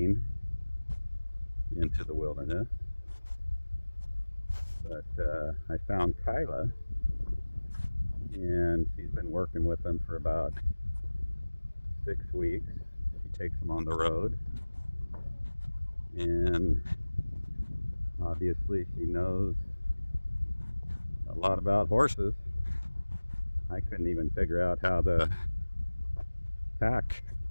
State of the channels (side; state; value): both; inverted; correlation -1.00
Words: into the wilderness. But I found Kyla, and she's been working with them for about 6 weeks. She takes them on the road, and obviously she knows a lot about horses. I couldn't even figure out how the tack